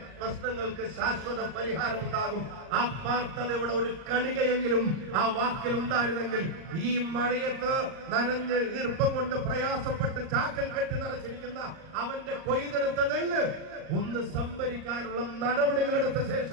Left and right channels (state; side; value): late; left; 38 ms